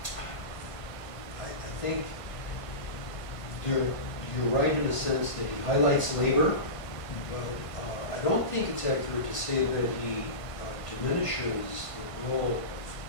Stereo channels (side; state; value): right; late; 1.5 ms